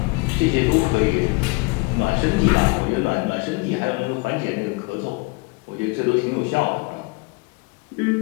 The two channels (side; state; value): right; quieter; 27.5 dB